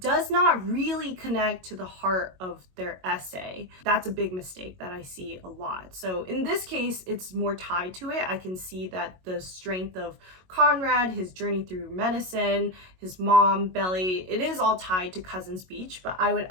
not really connect to the heart of their essay. That's a big mistake that I see a lot. So in this case, it's more tied to it. I can see that the strength of Conrad, his journey through medicine, his mom, Belly, it is all tied to Cousins Beach, but I would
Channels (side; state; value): left; late; 22 ms